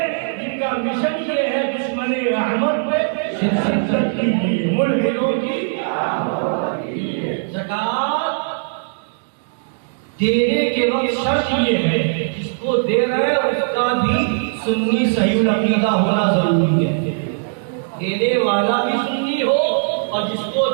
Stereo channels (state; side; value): silent; left; digital silence